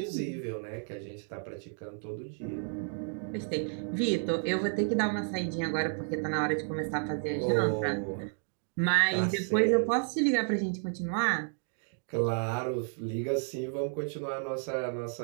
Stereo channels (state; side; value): silent; left; 57 dB below the other